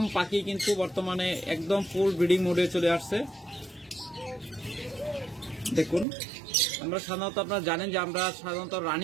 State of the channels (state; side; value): drops out; left; at 6.1 s